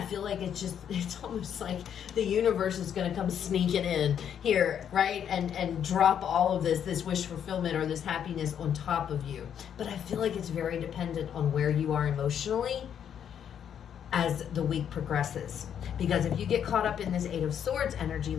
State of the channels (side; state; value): right; quieter; 8.8 dB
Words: feel like it's almost like the universe is going to come sneaking in here, right? And drop all of this wish fulfillment or this happiness on top of you. But I feel like it's very dependent on where you are emotionally as the week progresses. Because if you get caught up in this 8 of Swords energy,